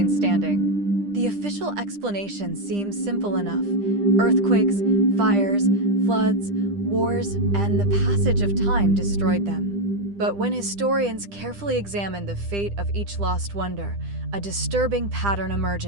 standing. The official explanation seems simple enough. Earthquakes, fires, floods, wars, and the passage of time destroyed them. But when historians carefully examine the fate of each lost wonder, a disturbing pattern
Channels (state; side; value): late; left; 10 ms